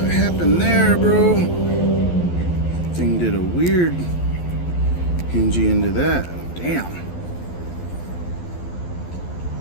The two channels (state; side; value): late; right; 12 ms